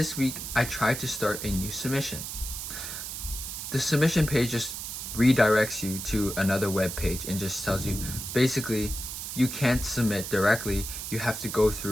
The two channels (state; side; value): noise; right; hiss, 7 dB below the sound